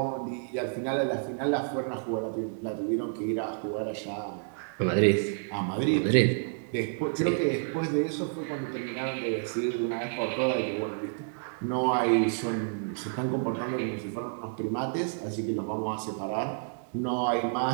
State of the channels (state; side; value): silent; left; digital silence